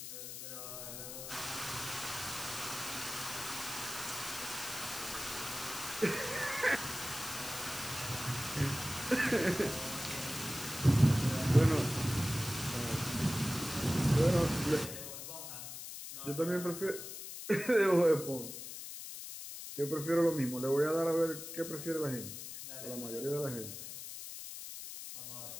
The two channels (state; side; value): noise; left; hiss, 9 dB below the sound